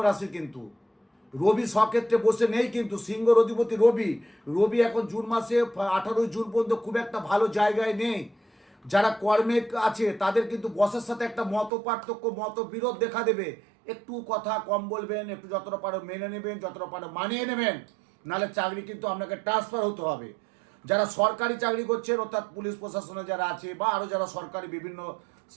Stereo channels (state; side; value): drops out; left; at 11.7 s